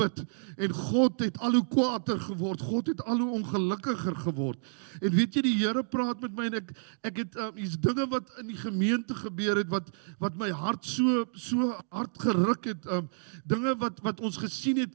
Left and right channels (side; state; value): left; silent; digital silence